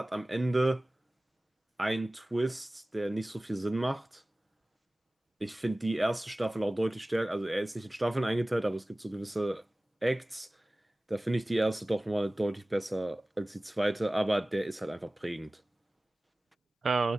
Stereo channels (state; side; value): normal; both; correlation 0.98